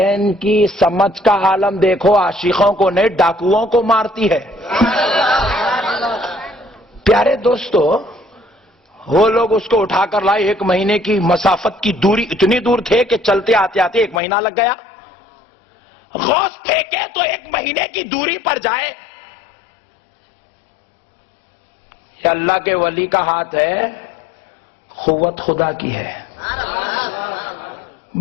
کی سمجھ کا عالم دیکھو, عاشقوں کو نہیں ڈاکوؤں کو مارتی ہے. پیارے دوستو, وہ لوگ اس کو اٹھا کر لائے. 1 مہینے کی مسافت کی دوری, اتنی دور تھے کہ چلتے آتے آتے 1 مہینہ لگ گیا. غوث پھینکے تو 1 مہینے کی دوری پر جائے. یہ اللہ کے ولی کا ہاتھ ہے, قوت خدا کی ہے.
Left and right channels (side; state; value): right; drops out; at 14.2 s